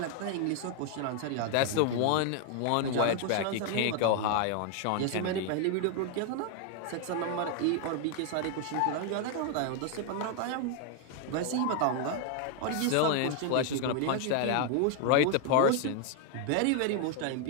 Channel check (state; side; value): different; both; correlation 0.00